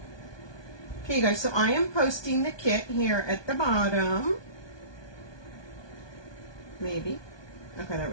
Okay, you guys, so I am posting the kit here at the bottom. Maybe. Okay, there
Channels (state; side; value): late; right; 1.2 ms